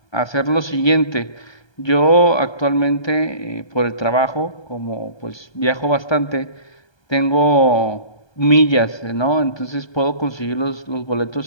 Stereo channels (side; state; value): right; late; 1.2 ms